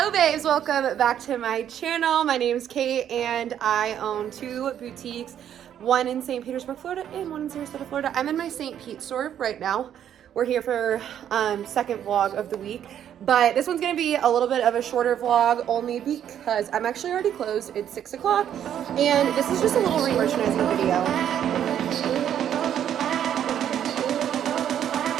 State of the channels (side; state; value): left; quieter; 9.9 dB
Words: babes, welcome back to my channel. My name is Kate and I own two boutiques, one in St. Petersburg, Florida and one in Sarasota, Florida. I'm in my St. Pete store right now. We're here for second vlog of the week, but this one's gonna be a little bit of a shorter vlog only because I'm actually already closed. It's 6 o'clock and this is just a little re-merchandising video.